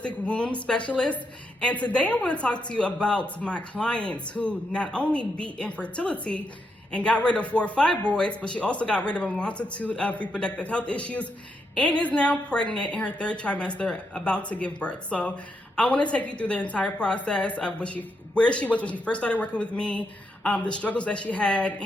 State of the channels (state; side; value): normal; both; correlation 0.81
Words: womb specialist. And today I want to talk to you about my clients who not only beat infertility and got rid of 4 fibroids, but she also got rid of a multitude of reproductive health issues and is now pregnant in her 3rd trimester, about to give birth. So I want to take you through the entire process of where she was when she first started working with me, the struggles that she had,